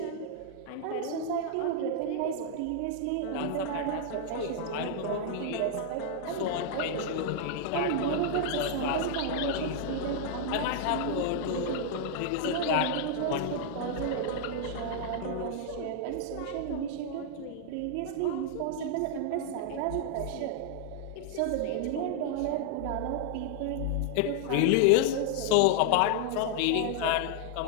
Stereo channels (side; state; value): both; different; correlation 0.00